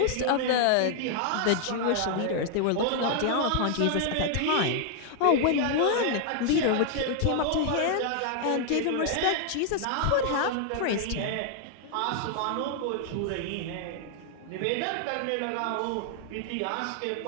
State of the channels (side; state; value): both; different; correlation 0.00